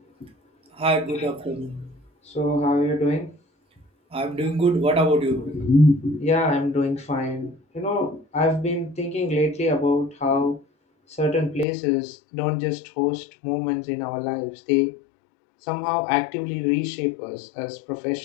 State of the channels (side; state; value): right; drops out; at 11.7 s